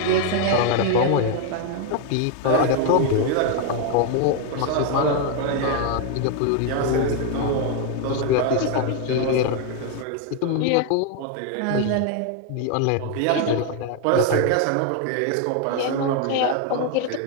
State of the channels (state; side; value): different; both; correlation 0.01